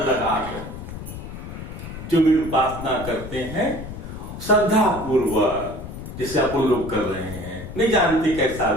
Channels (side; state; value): left; noise; rumble, 10 dB below the sound